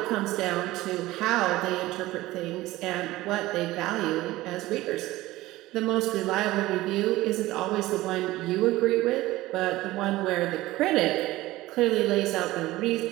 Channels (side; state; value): left; quieter; 17.7 dB